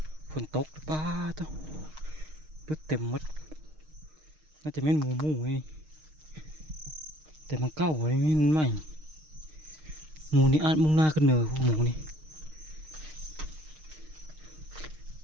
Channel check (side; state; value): left; late; 6.5 ms